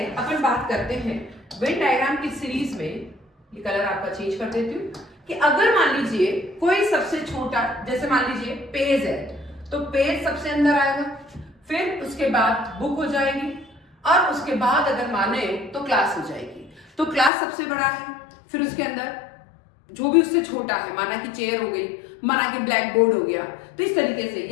अपन बात करते हैं वेन डायग्राम की सीरीज में। ये कलर आपका चेंज कर देती हूँ कि अगर मान लीजिए कोई सबसे छोटा, जैसे मान लीजिए पेज है, तो पेज सबसे अंदर आएगा, फिर उसके बाद बुक हो जाएगी, और उसके बाद अगर माने तो क्लास हो जाएगी। तो क्लास सबसे बड़ा है, फिर उसके अंदर जो भी उससे छोटा है, माना कि चेयर हो गई, माना कि ब्लैक बोर्ड हो गया, तो इस तरीके से,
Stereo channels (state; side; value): drops out; right; at 17.3 s